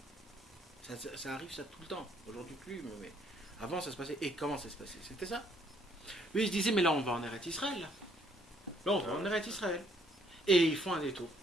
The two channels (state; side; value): normal; both; correlation 0.66